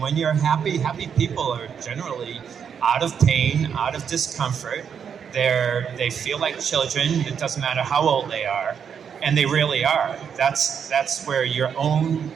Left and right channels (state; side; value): quieter; left; 7.4 dB